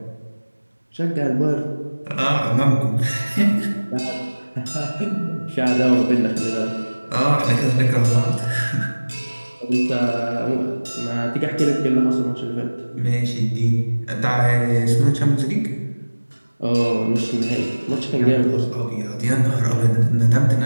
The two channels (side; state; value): both; inverted; correlation -1.00